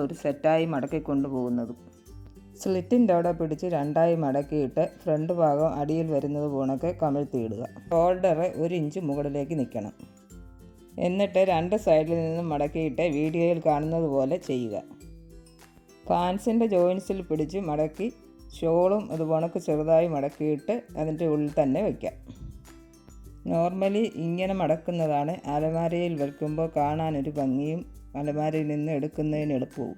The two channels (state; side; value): identical; both; correlation 1.00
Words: ഒരു സെറ്റായി മടക്കി കൊണ്ടുപോകുന്നതും. സ്ലിറ്റിൻ്റെ അവിടെ പിടിച്ച് രണ്ടായി മടക്കിയിട്ട് ഫ്രണ്ട് ഭാഗം അടിയിൽ വരുന്നത് പോണൊക്കെ കമിഴ്ത്തിയിടുക. ഷോൾഡർ 1 ഇഞ്ച് മുകളിലേക്ക് നിൽക്കണം. എന്നിട്ട് രണ്ട് സൈഡിൽ നിന്നും മടക്കിയിട്ട് വീഡിയോയിൽ കാണുന്നത് പോലെ ചെയ്യുക. പാൻസിൻ്റെ ജോയിൻസിൽ പിടിച്ച് മടക്കി ഷോളും അതുപോണക്ക് ചെറുതായി മടക്കിയിട്ട് അതിൻ്റെ ഉള്ളിൽ തന്നെ വയ്ക്കാം. നോർമലി ഇങ്ങനെ മടക്കുന്നതാണ് അലമാരയിൽ വയ്ക്കുമ്പോൾ കാണാനൊരു ഭംഗിയും അലമാരയിൽ നിന്ന് എടുക്കുന്നതിന്